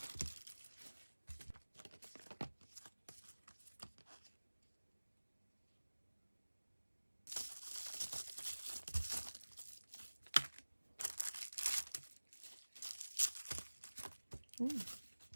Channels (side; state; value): both; inverted; correlation -1.00